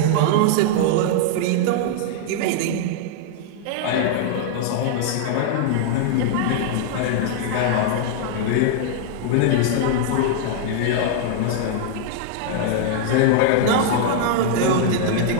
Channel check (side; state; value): both; different; correlation -0.01